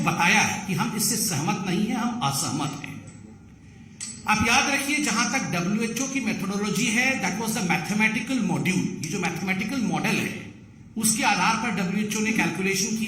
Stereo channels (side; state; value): both; identical; correlation 1.00